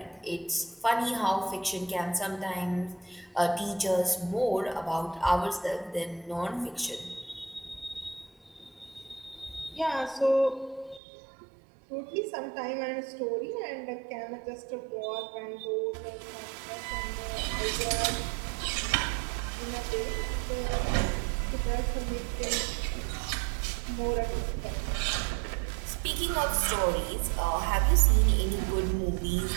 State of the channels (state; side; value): drops out; left; at 11.0 s